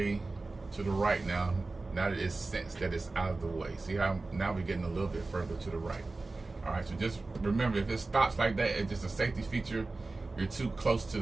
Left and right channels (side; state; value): left; quieter; 3.4 dB